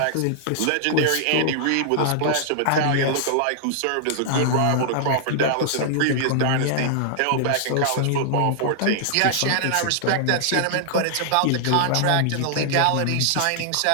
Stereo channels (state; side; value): different; both; correlation -0.01